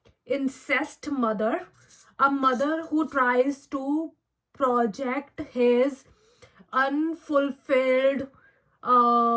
incest mother, a mother who tries to project his unfulfilled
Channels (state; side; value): identical; both; correlation 1.00